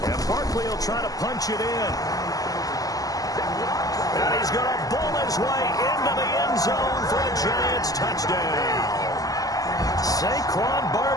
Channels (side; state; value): right; late; 0.17 ms